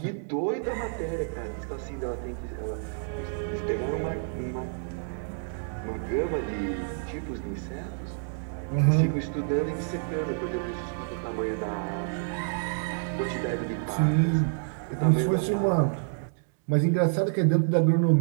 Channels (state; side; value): silent; left; digital silence